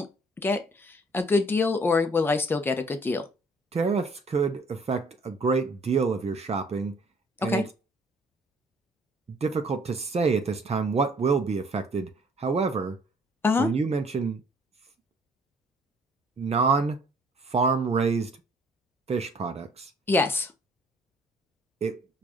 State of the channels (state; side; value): normal; both; correlation 0.58